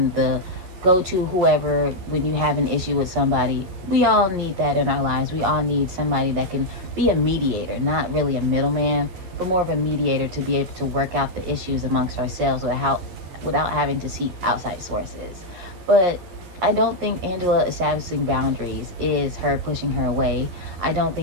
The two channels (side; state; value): left; late; 11 ms